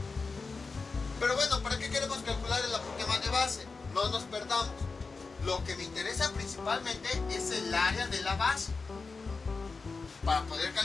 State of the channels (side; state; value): right; quieter; 4.3 dB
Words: Pero bueno, ¿para qué queremos calcular el apotema de base? No nos perdamos. Lo que me interesa principalmente es el área de la base, para poder